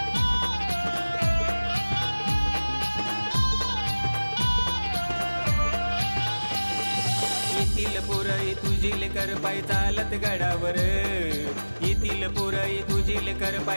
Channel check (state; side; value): inverted; both; correlation -1.00